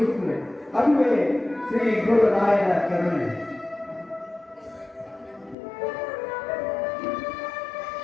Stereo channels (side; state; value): right; drops out; at 5.6 s